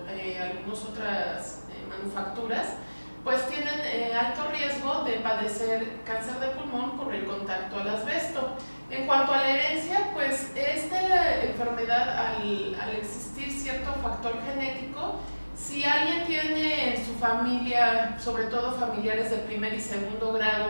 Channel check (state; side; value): inverted; both; correlation -1.00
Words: algunas otras manufacturas, pues tienen alto riesgo de padecer cáncer de pulmón por el contacto al asbesto. En cuanto a la herencia, pues esta enfermedad, al existir cierto factor genético, si alguien tiene en su familia, sobre todo familiares de primer y segundo